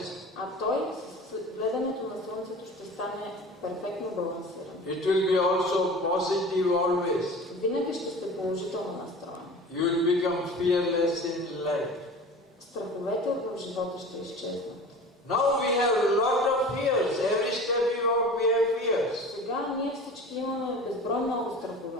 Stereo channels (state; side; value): normal; both; correlation 0.38